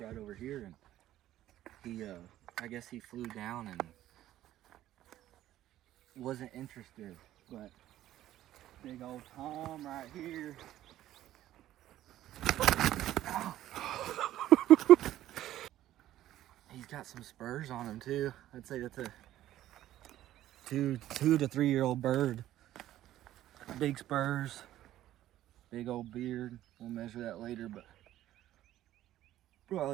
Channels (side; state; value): left; quieter; 13.5 dB